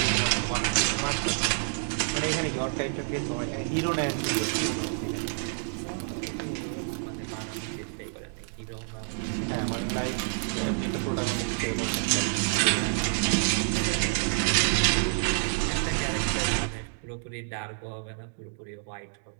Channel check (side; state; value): left; silent; digital silence